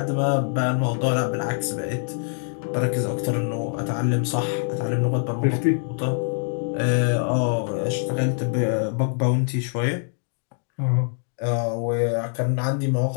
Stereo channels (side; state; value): right; silent; 62 dB below the other